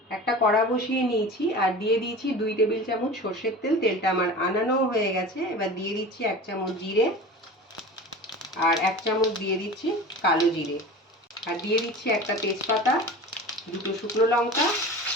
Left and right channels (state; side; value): normal; both; correlation 0.35